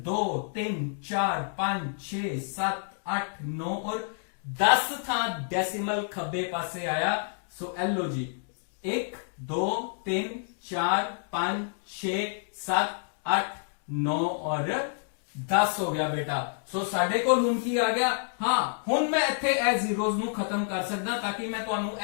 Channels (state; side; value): silent; right; digital silence